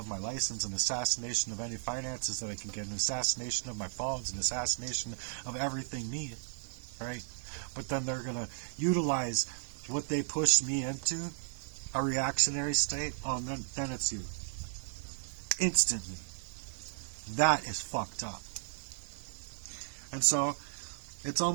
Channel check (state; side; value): silent; left; digital silence